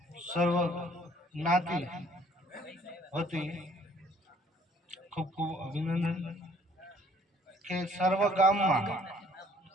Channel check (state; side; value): normal; both; correlation 0.59